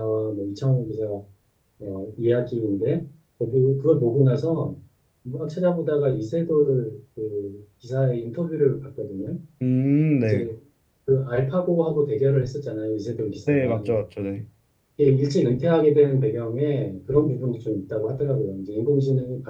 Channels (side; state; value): both; identical; correlation 1.00